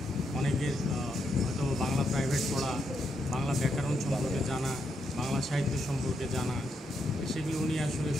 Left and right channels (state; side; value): normal; both; correlation 0.80